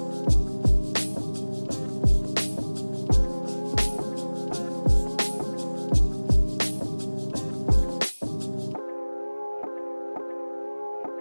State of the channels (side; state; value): both; inverted; correlation -1.00